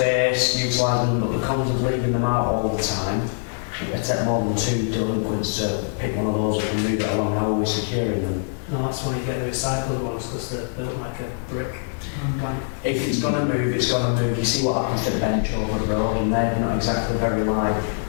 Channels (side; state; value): right; silent; 63 dB below the other